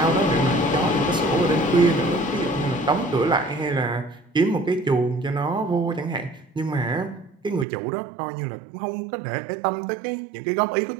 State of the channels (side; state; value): left; drops out; at 7.7 s